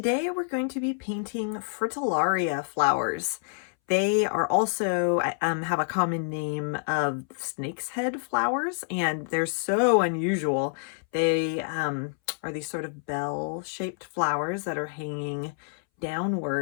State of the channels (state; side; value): silent; right; 60 dB below the other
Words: we're going to be painting Fritillaria flowers. They are also have a common name of snake's head flowers, and they're so unusual. They are these sort of bell-shaped flowers that are hanging